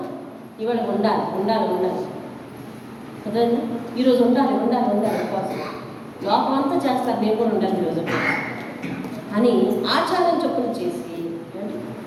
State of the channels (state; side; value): identical; both; correlation 1.00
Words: ఇవాళ ఉండాలి ఉండాలి ఉండాలి అర్థమైందా? ఈరోజు ఉండాలి ఉండాలి ఉండాలి ఉపవాసం. లోపం అంతా చేస్తారు, నేను కూడా ఉండాలి ఈరోజు అని ఆచారం చెప్పున చేసి